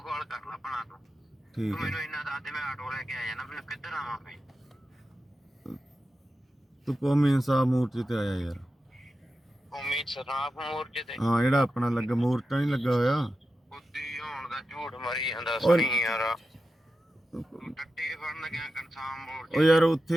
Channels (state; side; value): normal; both; correlation 0.91